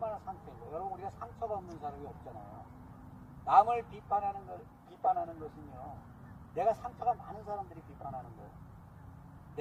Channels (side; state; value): both; identical; correlation 1.00